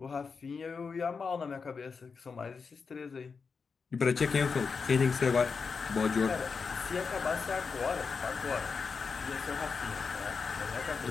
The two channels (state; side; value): quieter; right; 5.2 dB